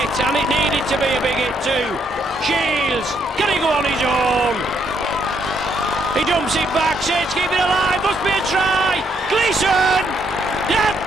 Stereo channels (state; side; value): normal; both; correlation 0.73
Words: and it needed to be a big hit too. Shields, can he go on his own? He dumps it back, says keep it alive, must be a try. Gleeson, yeah,